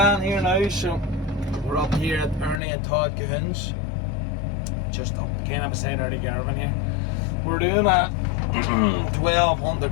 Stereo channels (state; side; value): drops out; right; at 2.6 s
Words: here now, so we're up here at Ernie and Todd Cahoon's, just up kind of beside Ernie Garvin here. We're doing a